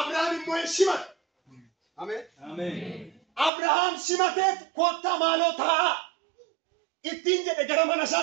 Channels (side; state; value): left; drops out; at 3.5 s